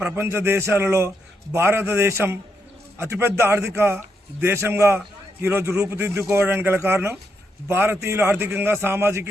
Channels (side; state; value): both; normal; correlation 0.80